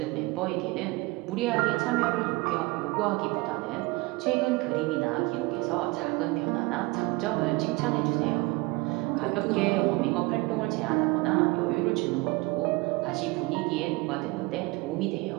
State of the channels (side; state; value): left; quieter; 23.5 dB